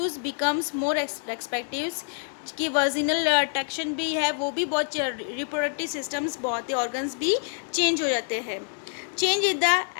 becomes more respective. कि virginal traction भी है वो भी बहुत, reproductive systems बहुत, organs भी change हो जाते हैं. Change in the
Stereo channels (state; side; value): silent; right; 59 dB below the other